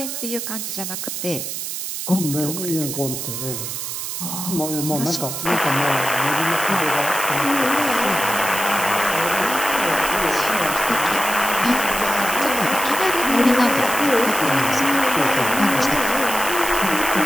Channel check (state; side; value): noise; right; hiss, 5 dB below the sound